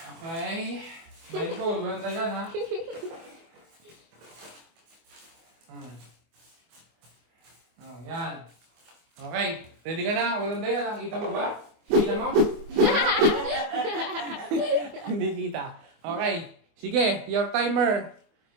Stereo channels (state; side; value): late; left; 24 ms